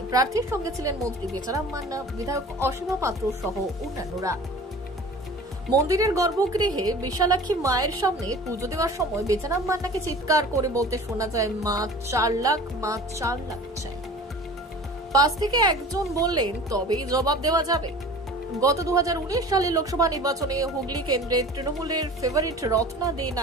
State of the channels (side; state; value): both; normal; correlation 0.41